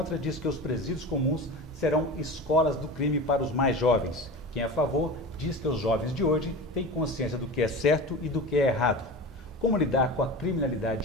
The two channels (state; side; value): normal; both; correlation 0.30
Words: diz que os presídios comuns serão escolas do crime para os mais jovens. Quem é a favor diz que os jovens de hoje têm consciência do que é certo e do que é errado. Como lidar com a